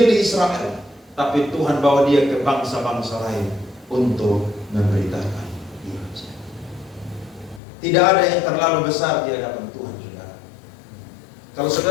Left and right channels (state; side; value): drops out; right; at 7.6 s